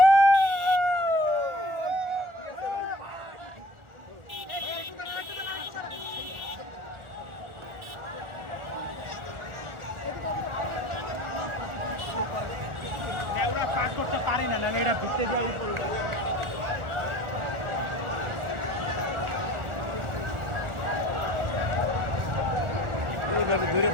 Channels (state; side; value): late; left; 1.4 ms